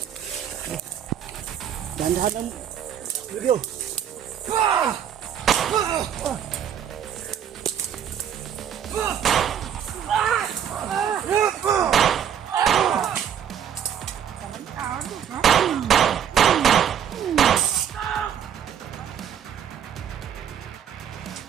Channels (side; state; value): left; quieter; 9.0 dB